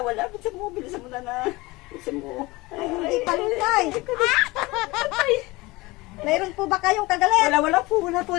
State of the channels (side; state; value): right; quieter; 22.0 dB